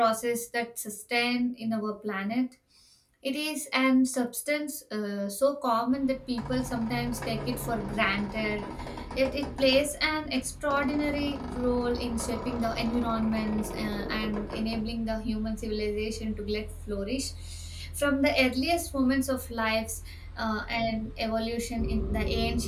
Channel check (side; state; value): both; identical; correlation 1.00